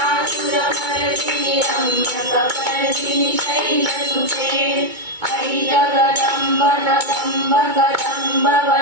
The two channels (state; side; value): late; left; 2.2 ms